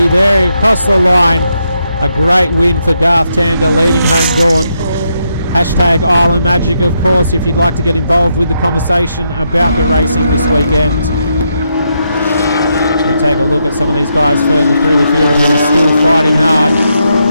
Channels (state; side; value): inverted; both; correlation -0.80